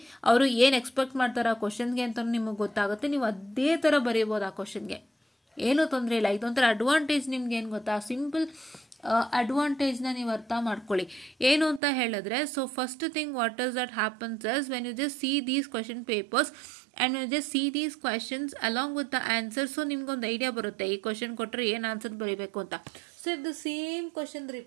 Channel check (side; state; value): left; drops out; at 11.8 s